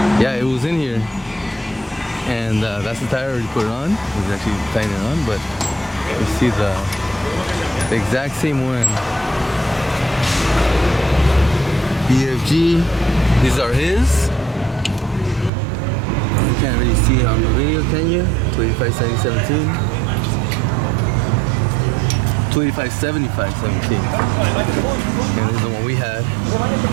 yeah, it was in here, and that's the tire. Already put it on. He's actually tying it on, but you see the exact same one. BFG, these are his. You can't really see it on the video, can you? 285 70 17. 285 75 17. And this is the one we had.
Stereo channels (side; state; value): left; drops out; at 15.5 s